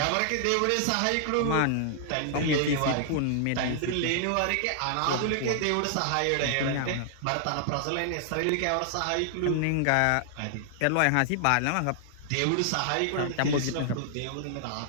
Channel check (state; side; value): different; both; correlation 0.00